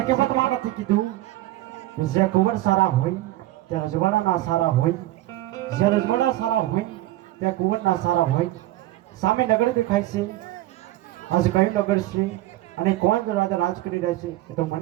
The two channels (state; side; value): quieter; left; 16.0 dB